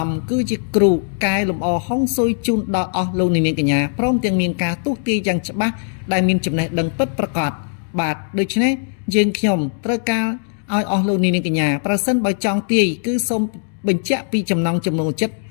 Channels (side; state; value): right; silent; 66 dB below the other